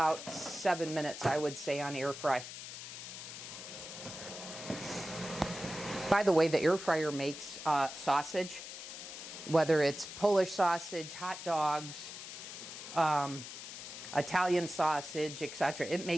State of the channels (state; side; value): noise; left; hiss, 10 dB below the sound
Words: 7 minutes, I would say, on air fry. By the way, the air fryer makes sausage, whether it's Polish sausage, hot dogs, Italian sausage, etc. It